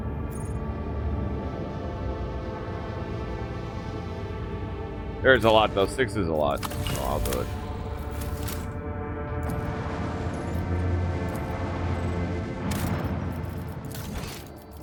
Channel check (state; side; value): identical; both; correlation 1.00